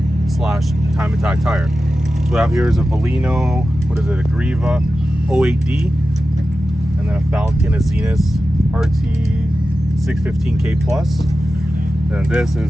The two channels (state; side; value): normal; both; correlation 0.93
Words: slash time attack tire. So what we have here is a Valino, what is it, a Greeva 08D, and then a Falken Azenis RT615k plus. And this